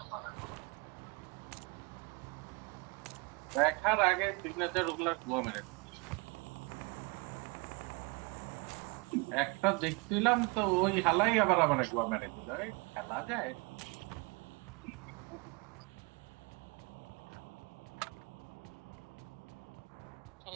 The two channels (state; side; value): quieter; left; 29.7 dB